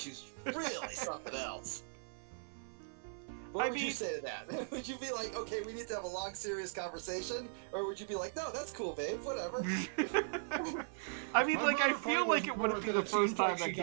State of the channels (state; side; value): silent; left; digital silence